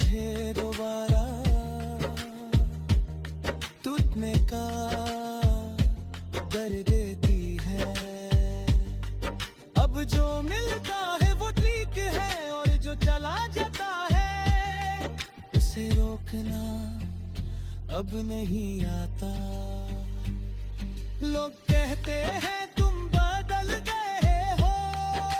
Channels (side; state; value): both; identical; correlation 1.00